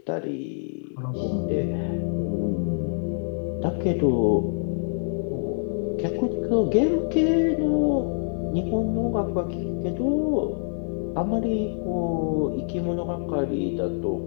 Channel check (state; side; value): silent; right; digital silence